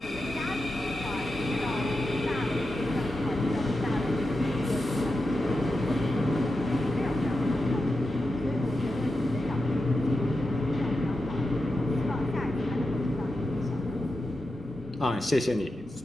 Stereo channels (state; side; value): normal; both; correlation 0.90